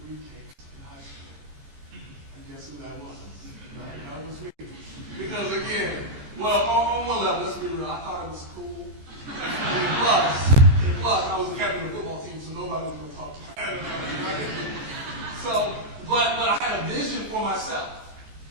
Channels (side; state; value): left; late; 14 ms